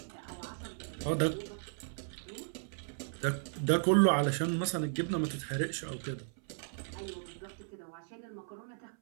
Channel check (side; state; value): left; silent; 54 dB below the other